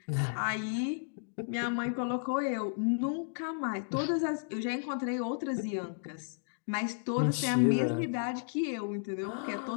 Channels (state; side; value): silent; right; digital silence